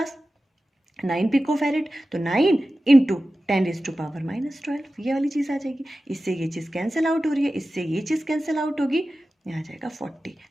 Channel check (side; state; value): both; normal; correlation 0.94